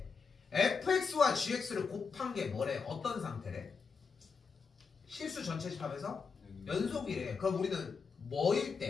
fx와 gx를 곱한 게 뭐래? 어떤 상태래? 실수 전체 집합에서 연속이래. 그럼 우리는 뭐일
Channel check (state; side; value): quieter; right; 5.3 dB